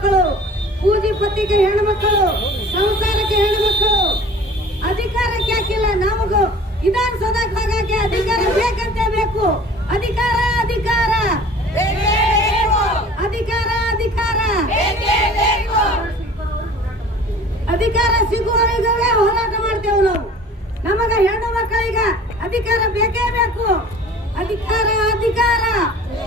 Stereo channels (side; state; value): both; normal; correlation 0.45